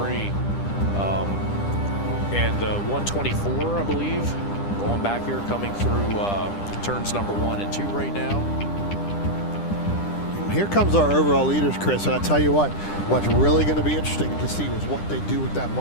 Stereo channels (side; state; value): right; late; 10 ms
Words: And the 124, I believe, going back here, coming through turns number 1 and 2 right now. Here comes our overall leaders, Chris, and I tell you what's really going to be interesting to see is what they do with that